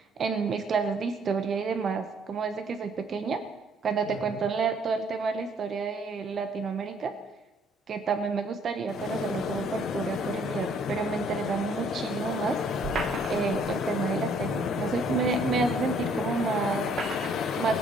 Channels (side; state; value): both; normal; correlation 0.62